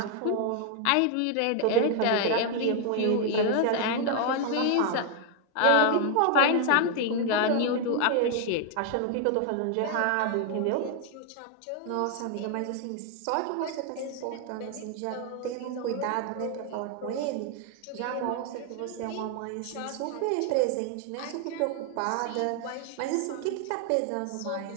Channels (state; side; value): different; both; correlation 0.00